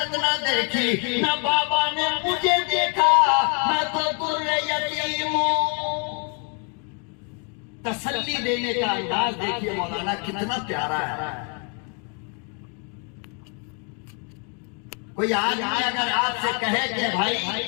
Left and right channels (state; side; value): quieter; right; 38.3 dB